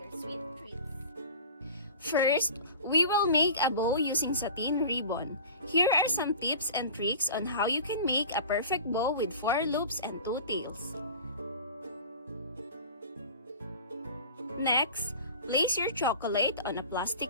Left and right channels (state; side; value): inverted; both; correlation -0.38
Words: sweet treats. First, we will make a bow using satin ribbon. Here are some tips and tricks on how you can make a perfect bow with 4 loops and 2 tails. Next, place your chocolate on a